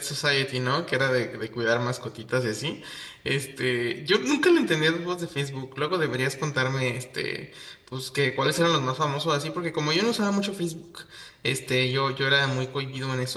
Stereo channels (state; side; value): identical; both; correlation 1.00